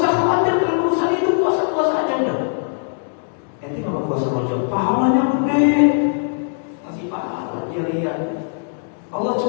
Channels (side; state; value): right; silent; digital silence